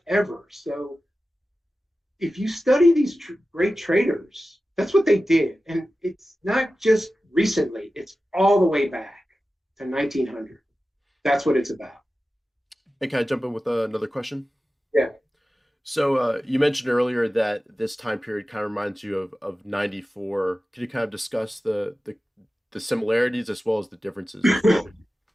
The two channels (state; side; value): normal; both; correlation 0.94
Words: ever. So if you study these great traders, that's what they did. And it's not just recently, it's all the way back to 1900. That's what it's about. And can I jump in with another question? Yeah. So you mentioned earlier that this time period kind of reminds you of 94. Can you kind of discuss the similarities as well as the differences as well?